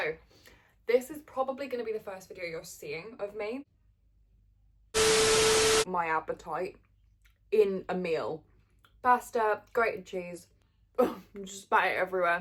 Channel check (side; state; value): both; identical; correlation 1.00